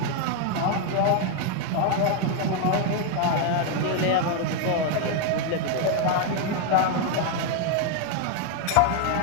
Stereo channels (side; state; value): both; different; correlation 0.01